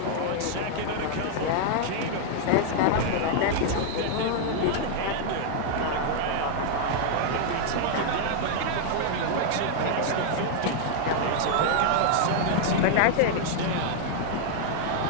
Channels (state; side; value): different; both; correlation 0.00